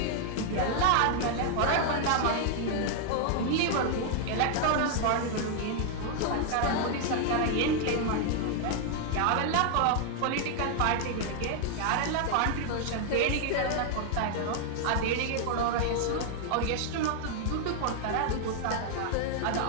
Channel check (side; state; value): both; different; correlation 0.00